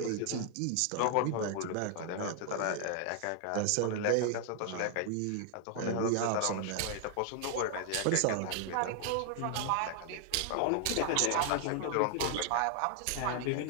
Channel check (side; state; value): both; different; correlation 0.00